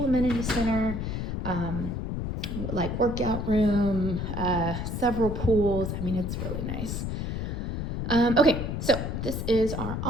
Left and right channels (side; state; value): left; noise; rumble, 3 dB below the sound